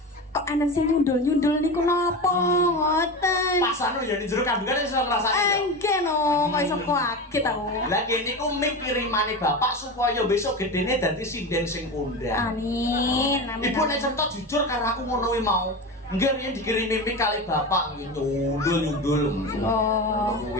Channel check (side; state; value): both; normal; correlation 0.24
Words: kok ana sing nyundul-nyundul niku napa ngoten. Pas anu ya di jero kandungan iso ngrasani. Nggih no, kok iso kaget aku. Lah kene niku mic kirimane bapak supaya besok gedene dadi sinden sing kondang. Amin. Amin. Ibu nek cerita jujur karo aku ngono kuwi mau. Nggih riyen dikirimi mic kali bapak nyundul-nyundul. Oh.